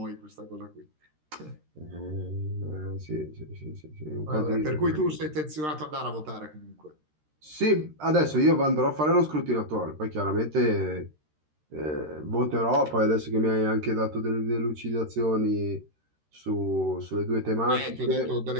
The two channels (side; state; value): left; late; 13 ms